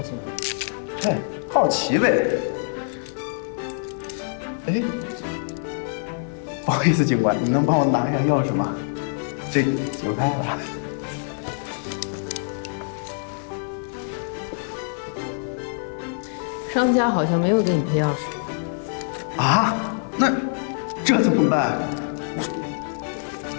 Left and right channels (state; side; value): silent; right; 59 dB below the other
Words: 西？哎，好奇呗。哎，不好意思，警官，你能帮我拿一下钥匙吗？这有开了。商家好像没有给你配钥匙。啊？那这怎么办？